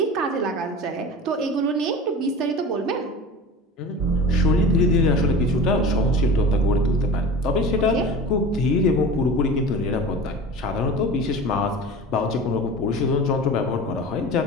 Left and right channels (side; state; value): both; normal; correlation 0.35